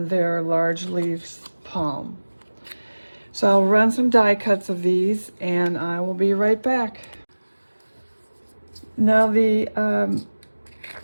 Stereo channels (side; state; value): both; inverted; correlation -1.00